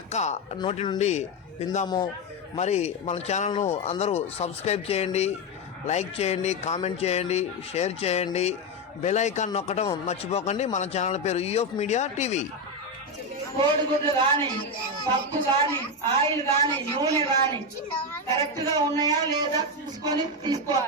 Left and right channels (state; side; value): normal; both; correlation 0.09